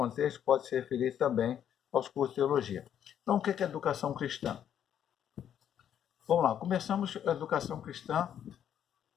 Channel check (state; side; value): quieter; right; 9.6 dB